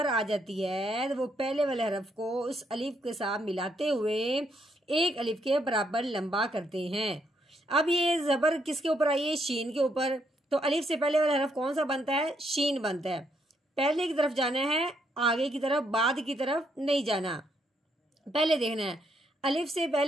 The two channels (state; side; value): normal; both; correlation 0.74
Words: आ जाती है तो वो पहले वाले हरफ को उस अलीफ के साथ मिलाते हुए एक अलीफ के बराबर लंबा करते हैं। अब ये ज़बर किसके ऊपर आई है, शीन के ऊपर। तो अलीफ से पहले वाला हरफ कौन सा बनता है, शीन बनता है। पहले की तरफ जाना है, आगे की तरफ, बाद की तरफ नहीं जाना। पहले देखना है, अलीफ से